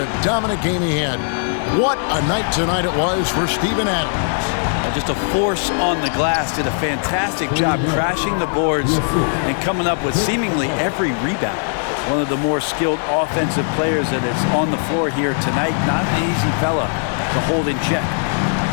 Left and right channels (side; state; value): right; silent; 66 dB below the other